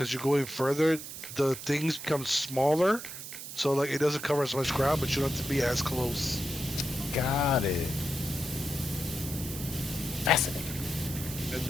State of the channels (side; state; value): right; noise; hiss, 10 dB below the sound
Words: you're going further, the things become smaller, so like it doesn't cover as much ground, but you don't have to be as close. Got it. Fascinating. And